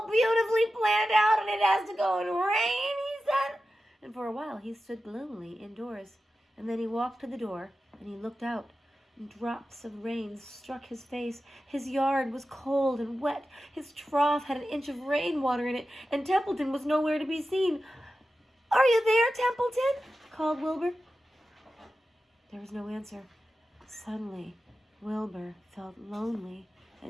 beautifully planned out, and it has to go and rain, he said. And for a while he stood gloomily indoors, and then he walked to the door, and he looked out, and drops of rain struck his face. His yard was cold and wet. His trough had an inch of rainwater in it, and Templeton was nowhere to be seen. "Are you there, Templeton?" called Wilbur. There was no answer. Suddenly, Wilbur felt lonely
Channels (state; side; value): normal; both; correlation 0.93